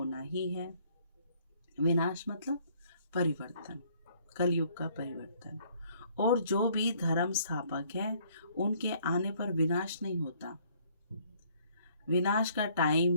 ही है। विनाश मतलब परिवर्तन। कलयुग का परिवर्तन। और जो भी धर्म स्थापक है उनके आने पर विनाश नहीं होता। विनाश का टाइम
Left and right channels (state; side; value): inverted; both; correlation -0.62